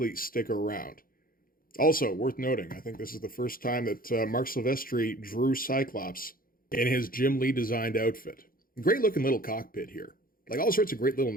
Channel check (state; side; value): late; right; 0.42 ms